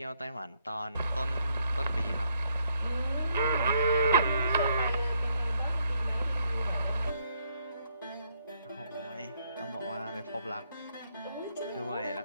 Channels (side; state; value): both; inverted; correlation -0.72